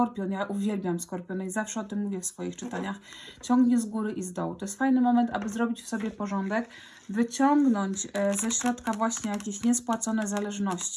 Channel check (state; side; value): identical; both; correlation 1.00